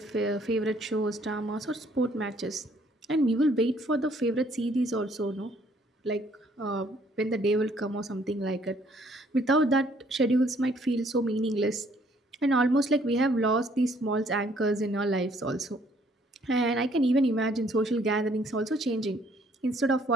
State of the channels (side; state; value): both; normal; correlation 0.64